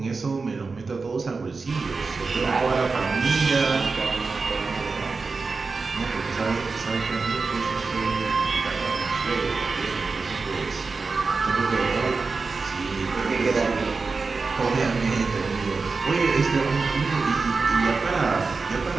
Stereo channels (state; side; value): quieter; left; 4.3 dB